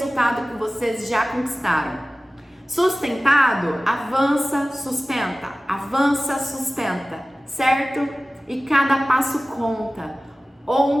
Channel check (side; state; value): both; normal; correlation 0.97